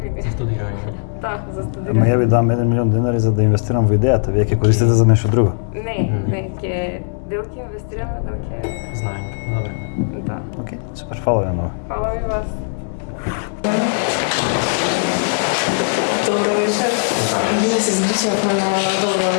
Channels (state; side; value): silent; right; digital silence